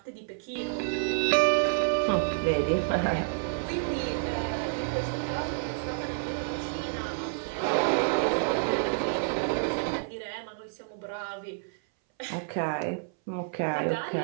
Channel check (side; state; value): left; silent; 58 dB below the other